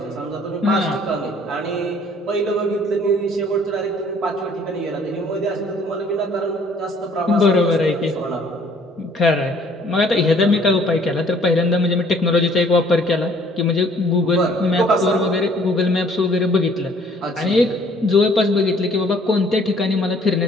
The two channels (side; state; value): both; normal; correlation 0.58